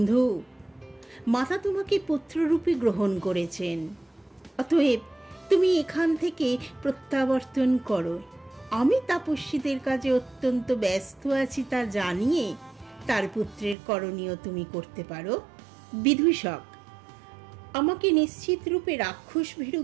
মাতা তোমাকে পুত্ররূপে গ্রহণ করেছেন, অতএব তুমি এখান থেকে প্রত্যাবর্তন করো। আমি তাপস্বীদের কাজে অত্যন্ত ব্যস্ত আছি তা জানিয়ে তার পুত্রের করণীয় তুমি করতে পারো। বিদূষক: আমাকে নিশ্চিত রূপে রাক্ষস ভীরু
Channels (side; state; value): left; drops out; at 13.8 s